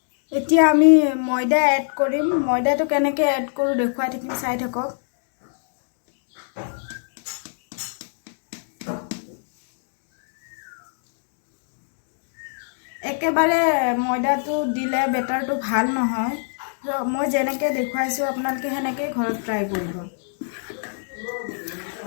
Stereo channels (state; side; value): silent; right; digital silence